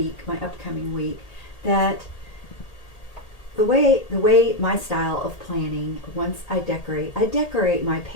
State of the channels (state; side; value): late; right; 1.8 ms